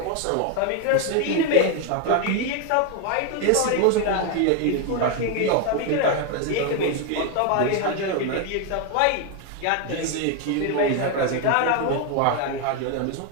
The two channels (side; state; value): both; different; correlation 0.01